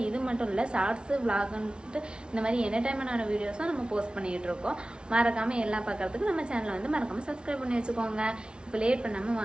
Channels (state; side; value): late; left; 0.056 ms